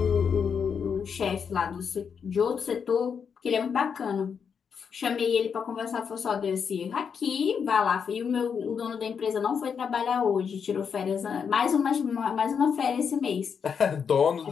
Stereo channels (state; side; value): quieter; right; 6.7 dB